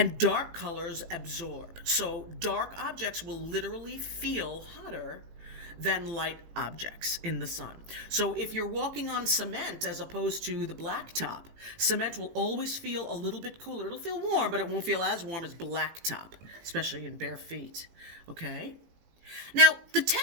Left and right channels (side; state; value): left; late; 18 ms